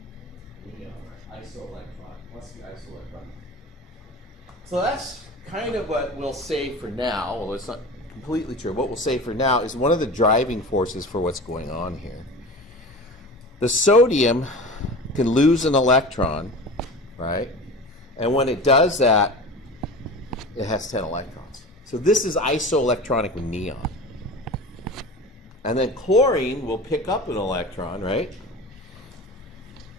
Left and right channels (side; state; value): both; normal; correlation 0.34